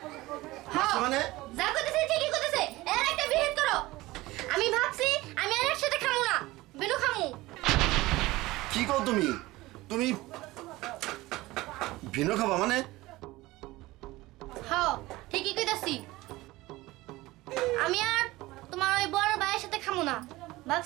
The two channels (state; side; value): quieter; left; 19.2 dB